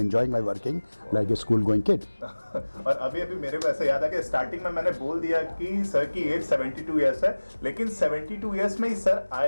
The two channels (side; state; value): both; inverted; correlation -1.00